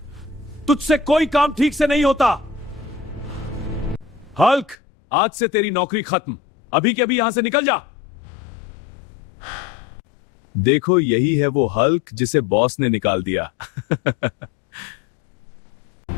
तुझसे कोई काम ठीक से नहीं होता। हल्क, आज से तेरी नौकरी खत्म। अभी के अभी यहां से निकल जा। देखो, यही है वो हल्क जिसे बॉस ने निकाल दिया।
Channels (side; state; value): right; drops out; at 4.8 s